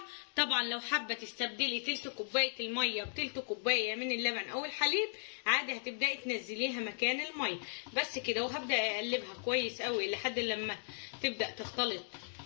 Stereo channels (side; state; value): right; silent; digital silence